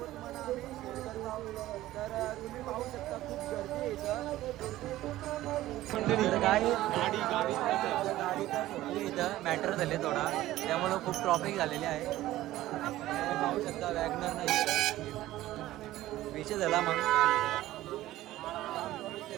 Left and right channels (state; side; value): quieter; left; 15.4 dB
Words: तुम्हाला आम्ही शेअर करत आहोत. तर तुम्ही पाहू शकता खूप गर्दी आहे इथं. गाडी तर इथं मॅटर झाले थोडा, त्यामुळं खूप ट्रॉफिक झालेली आहे. तुम्ही पाहू शकता वॅगनर नाही विषय झाला म्हणून